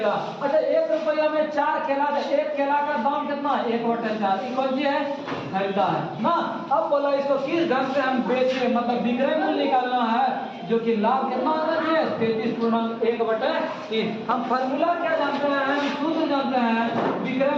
अच्छा 1 रुपया में 4 केला, तो एक केला का दाम कितना 1/4, ये कौन सी है, खरीदा है ना। अब बोला इसको किस ढंग से हम बेचे, मतलब विक्रय मूल्य निकालना है, जो कि लाभ कितना आना चाहिए 33.1/3। हम फॉर्मूला क्या जानते हैं, हम सूत्र जानते हैं, विक्रय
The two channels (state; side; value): identical; both; correlation 1.00